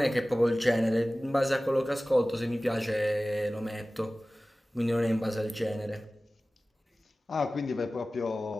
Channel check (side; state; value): both; normal; correlation 0.97